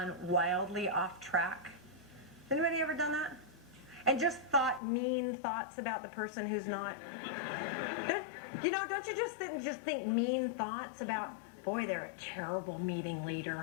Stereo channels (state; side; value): drops out; right; at 4.8 s